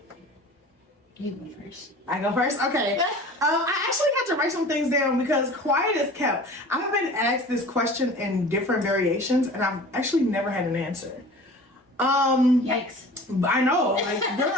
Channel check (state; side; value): normal; both; correlation 0.42